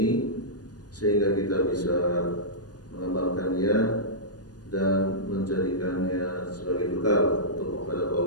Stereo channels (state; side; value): late; right; 0.69 ms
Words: sehingga kita bisa mengamalkannya dan menjadikannya sebagai bekal untuk menghadap